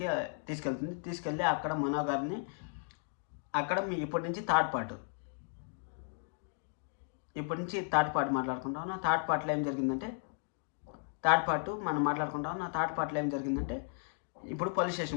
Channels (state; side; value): silent; right; 54 dB below the other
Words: తీసుకెళ్ళి అక్కడ మనో గారిని అక్కడ ఇప్పటి నుంచి థర్డ్ పార్ట్ మాట్లాడుకుంటాం. థర్డ్ పార్ట్లో ఏం జరిగిందంటే ఇప్పుడు పోలీస్